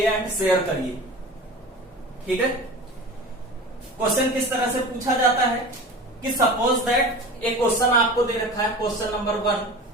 एंड शेयर करिए। ठीक है। क्वेश्चन किस तरह से पूछा जाता है कि सपोज दैट एक क्वेश्चन आपको दे रखा है, क्वेश्चन नंबर 1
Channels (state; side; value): normal; both; correlation 0.35